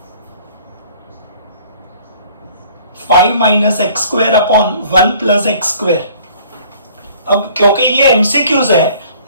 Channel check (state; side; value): inverted; both; correlation -0.54